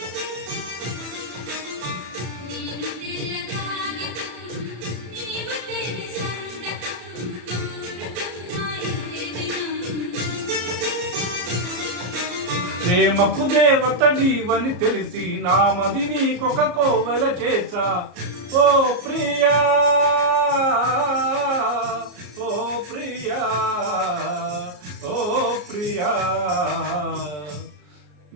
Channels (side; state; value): left; late; 34 ms